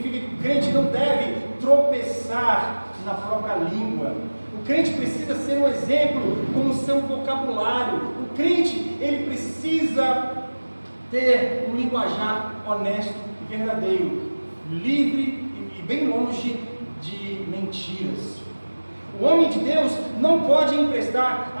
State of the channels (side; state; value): both; inverted; correlation -1.00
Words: que o crente não deve tropeçar na própria língua. O crente precisa ser um exemplo com o seu vocabulário. O crente, ele precisa ter um linguajar honesto e verdadeiro, livre e bem longe de mentiras. O homem de Deus não pode emprestar